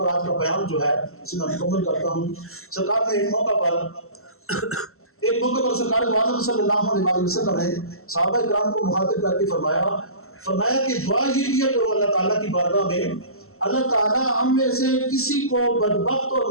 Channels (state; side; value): late; right; 0.63 ms